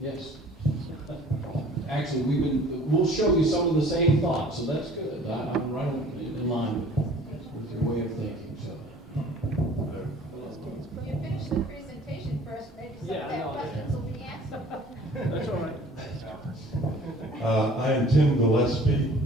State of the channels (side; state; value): both; normal; correlation 0.50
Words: yes. Actually, we'll show you some of the same thoughts, so that's good. I'm right in line with your way of thinking, so. You finish the presentation first, maybe some of their questions will be answered. That's all right. I am Tim Gillespie.